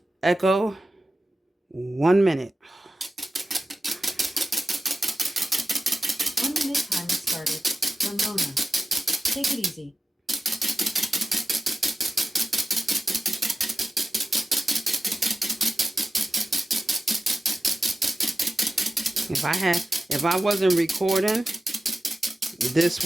Echo, 1 minute. 1 minute timer started. Ramona. Take it easy. If I wasn't recording, this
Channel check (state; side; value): normal; both; correlation 0.94